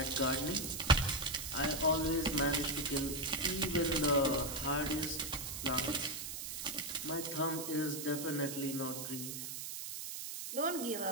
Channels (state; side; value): noise; right; hiss, 6 dB below the sound